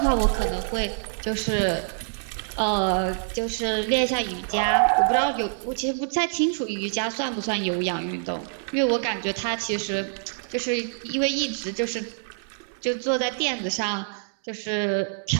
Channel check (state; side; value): silent; left; digital silence